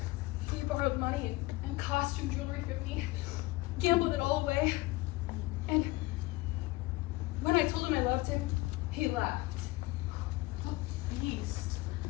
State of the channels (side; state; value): right; quieter; 20.6 dB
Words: borrowed money and costume jewelry from me, gambled it all away. And when I told him I loved him, he laughed. Beast.